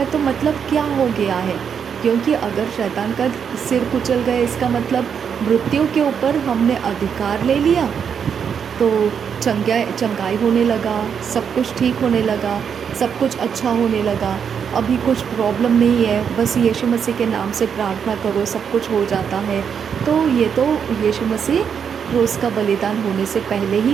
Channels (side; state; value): left; quieter; 7.3 dB